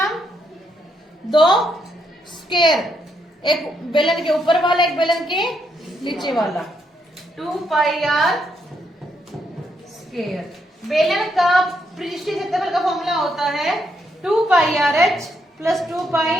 दो स्क्वायर, एक बेलन के ऊपर वाला एक बेलन के नीचे वाला, 2 पाई आर स्क्वायर। बेलन का पृष्ठीय क्षेत्रफल का फॉर्मूला होता है 2 pi r h plus 2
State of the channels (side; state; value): both; normal; correlation 0.77